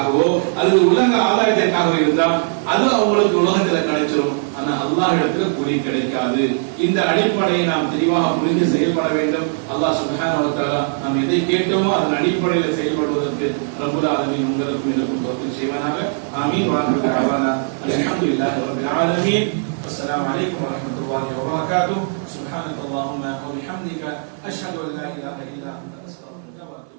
அல்லது உலக ஆதாயத்திற்காகவோ இருந்தால் அது அவங்களுக்கு உலகத்துல கிடைச்சிடும். ஆனா அல்லாஹ் இடத்துல கூலி கிடைக்காது. இந்த அடிப்படையை நாம் தெளிவாக புரிந்து செயல்பட வேண்டும். அல்லாஹ் சுப்ஹானஹு வ தஆலா நாம் எதை கேட்டோமோ அதன் அடிப்படையில் செயல்படுவதற்கு ரப்புல் ஆலமீன் உங்களுக்கும் எனக்கும் தௌஃபீக் செய்வானாக. ஆமீன். வ ஆகிரு தஅவானா அல்ஹம்துலில்லாஹி ரப்பில் ஆலமீன். அஸ்ஸலாமு அலைக்கும் வ ரஹ்மத்துல்லாஹி வ பரகாத்துஹு. சுப்ஹானக அல்லாஹும்ம வ பிஹம்திக அஷ்ஹது அன் லா இலாஹா இல்லா அன்த அஸ்தக்ஃபிருக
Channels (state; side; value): silent; left; digital silence